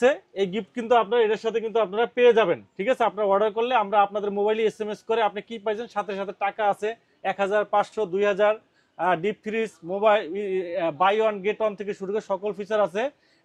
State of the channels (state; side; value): identical; both; correlation 1.00